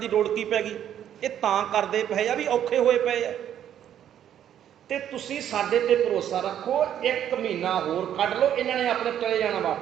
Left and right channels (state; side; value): quieter; left; 10.3 dB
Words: ਲੋੜ ਕੀ ਪੈ ਗਈ? ਇਹ ਤਾਂ ਕਰਦੇ ਪਏ ਆ ਵੀ ਔਖੇ ਹੋਏ ਪਏ ਆ, ਤੇ ਤੁਸੀਂ ਸਾਡੇ ਤੇ ਭਰੋਸਾ ਰੱਖੋ, 1 ਮਹੀਨਾ ਹੋਰ ਕੱਢ ਲਓ, ਇਹਨਾਂ ਨੇ ਆਪਣੇ ਚਲੇ ਜਾਣਾ